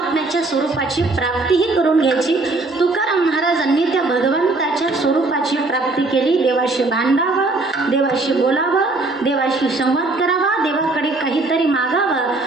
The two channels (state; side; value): quieter; left; 3.2 dB